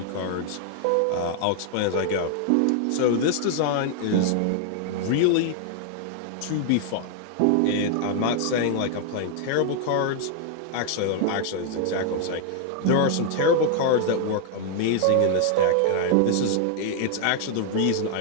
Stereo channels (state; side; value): different; both; correlation 0.00